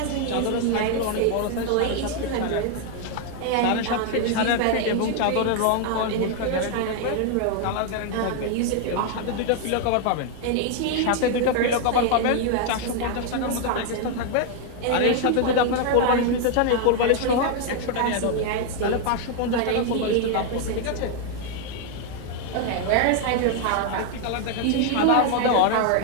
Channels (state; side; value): different; both; correlation 0.00